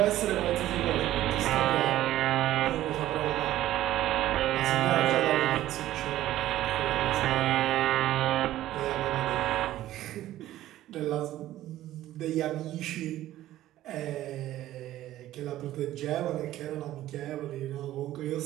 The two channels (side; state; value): left; quieter; 14.1 dB